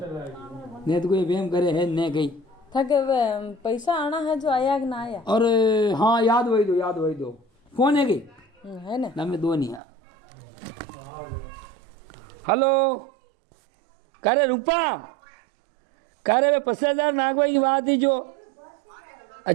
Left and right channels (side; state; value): left; drops out; at 9.8 s